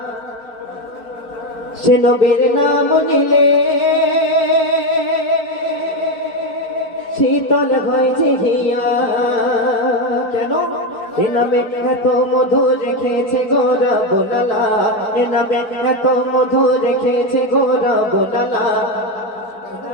সে নবীর নাম নিলে শীতল হয় যে হিয়া কেন এ নামে এত মধু রেখেছে গোরা বোনালা এ নামে এত মধু রেখেছে গোরা বোনালা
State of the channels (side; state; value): right; late; 4.6 ms